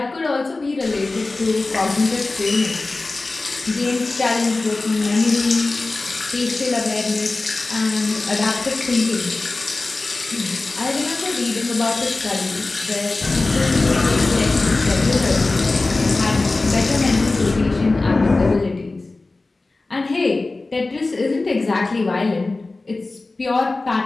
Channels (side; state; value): right; quieter; 3.3 dB